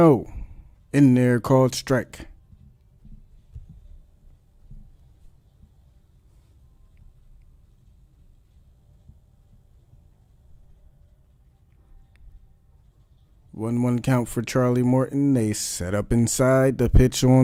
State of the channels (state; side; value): identical; both; correlation 1.00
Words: in there, called strike. One count for Charlie Morton. They set up inside. The pitch